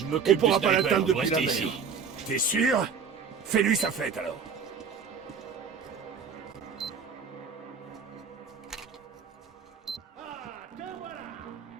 m'occupe On pourra du pas sniper, l'atteindre depuis la restez mer. ici. T'es sûr? Fais-lui sa fête alors.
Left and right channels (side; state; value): left; quieter; 6.2 dB